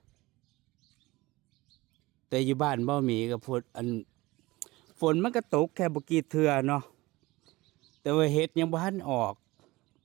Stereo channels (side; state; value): left; quieter; 20.7 dB